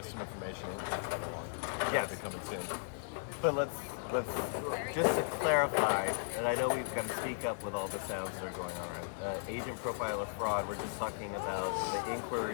some information. Yeah, they're coming soon. But let's just to clarify, and I know we've got to speak up with all the sounds that are going on. Agent profiler fraud. We're just talking about the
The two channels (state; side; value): silent; right; digital silence